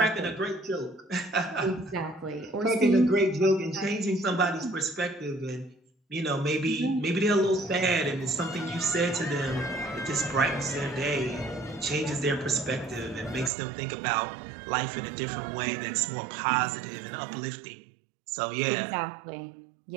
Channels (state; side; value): drops out; left; at 13.5 s